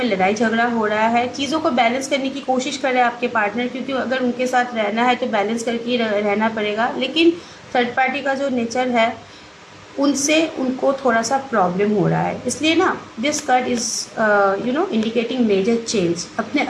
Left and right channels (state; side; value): identical; both; correlation 1.00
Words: लड़ाई झगड़ा हो रहा है। चीज़ों को बैलेंस करने की कोशिश कर रहे हैं आपके पार्टनर, क्योंकि अगर उनके साथ रहना है तो बैलेंस करके रहना पड़ेगा। लेकिन थर्ड पार्टी का जो नेचर है, उनसे उनको थोड़ा सा प्रॉब्लम हो रहा है। इसलिए ना this card is indicating major change. अपने